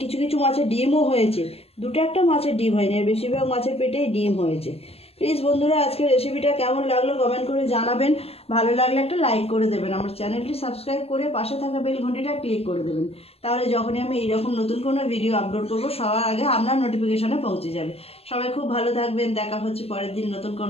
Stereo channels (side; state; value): right; late; 0.29 ms